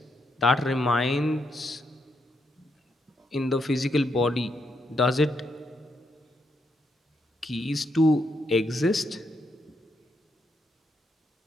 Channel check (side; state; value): both; normal; correlation 0.79